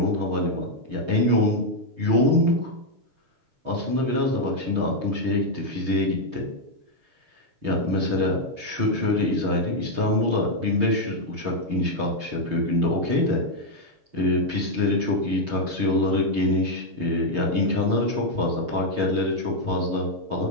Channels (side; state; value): left; late; 6.5 ms